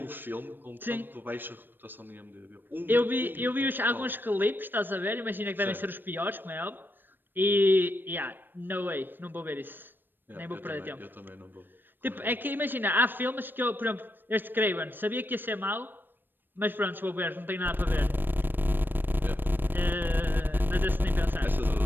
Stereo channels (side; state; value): left; late; 0.094 ms